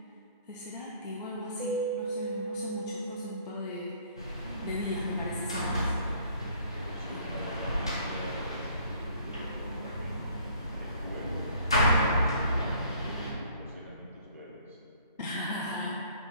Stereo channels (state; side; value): inverted; both; correlation -0.59